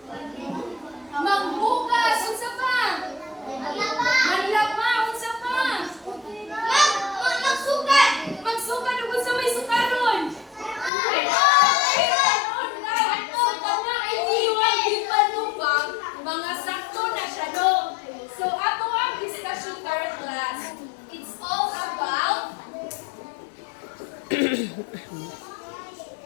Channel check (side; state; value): right; drops out; at 10.9 s